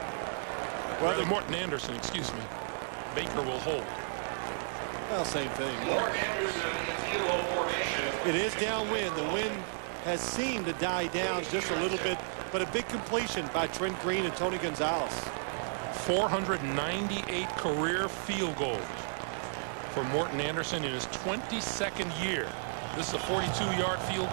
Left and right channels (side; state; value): left; silent; digital silence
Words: Well, Rather, Morton Anderson, excuse me. Baker will hold. Well, same thing. It is downwind. The wind has seemed to die down just a little bit, but a big completion by Trent Green and Tony Gonzalez. 498 career field goals for Morton Anderson in his 22nd year. This is a 42-yard field